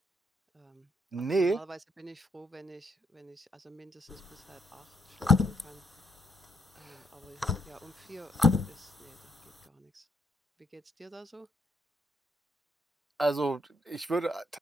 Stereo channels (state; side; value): normal; both; correlation 0.73